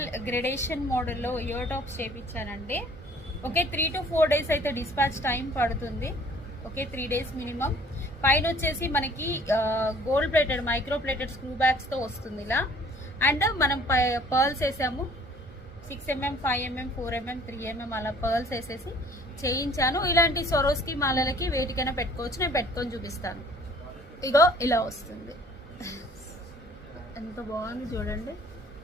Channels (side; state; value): both; normal; correlation 0.54